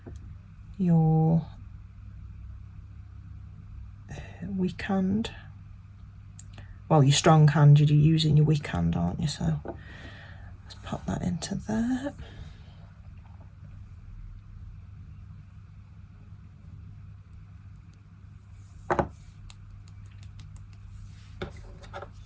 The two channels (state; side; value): identical; both; correlation 1.00